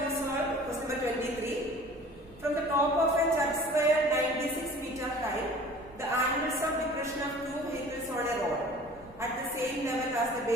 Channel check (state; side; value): noise; right; rumble, 23 dB below the sound